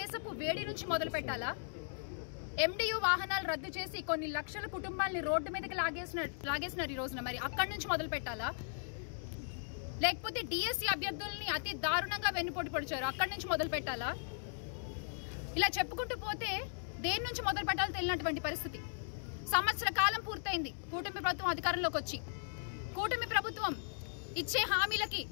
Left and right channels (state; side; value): silent; right; digital silence